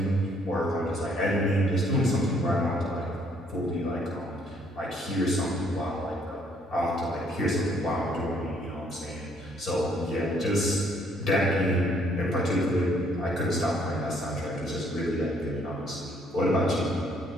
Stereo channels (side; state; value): both; normal; correlation 0.66